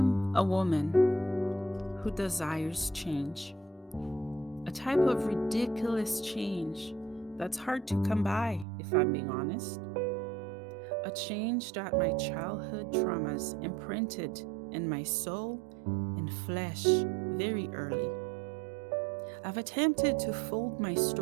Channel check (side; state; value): left; drops out; at 8.7 s